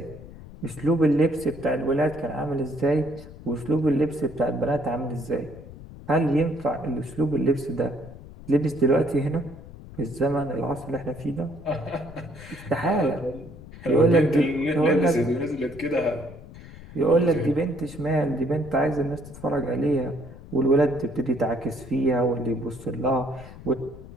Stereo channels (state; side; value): noise; left; rumble, 16 dB below the sound